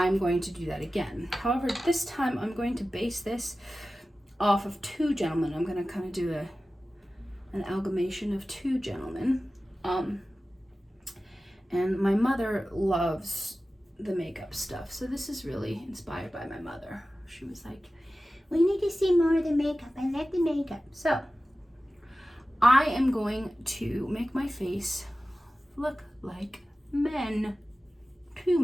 going to do that again. However, this time I'm going to base this off of 2 gentlemen. I'm going to kind of do an amalgamation of 2 gentlemen. And my mother loves the makeup stuff, so this is really inspired by my mother. She was like, we need to see more of the makeup. I like the makeup. So I am going to make my face look like men. 2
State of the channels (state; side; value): normal; both; correlation 0.95